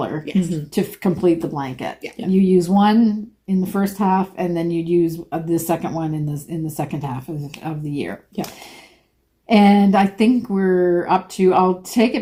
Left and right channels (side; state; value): both; identical; correlation 1.00